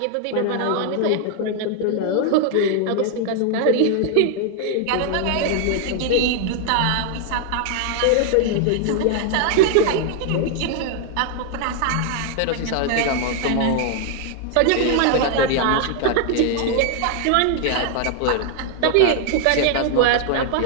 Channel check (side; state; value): both; different; correlation 0.00